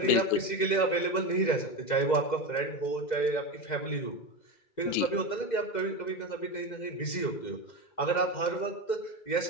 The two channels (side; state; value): right; late; 2.1 ms